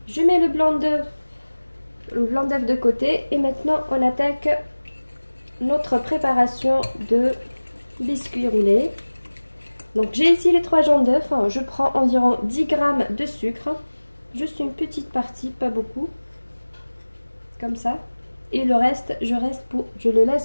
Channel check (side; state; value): both; inverted; correlation -1.00